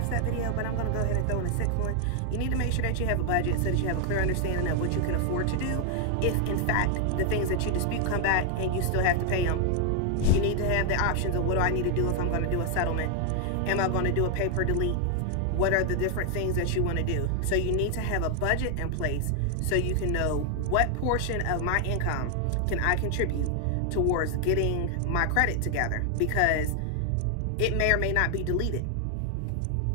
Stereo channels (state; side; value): different; both; correlation 0.00